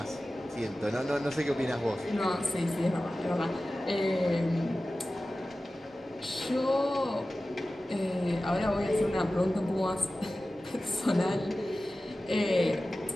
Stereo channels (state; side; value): normal; both; correlation 0.95